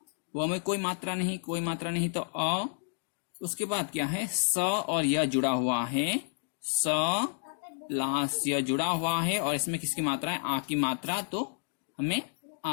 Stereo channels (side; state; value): right; silent; digital silence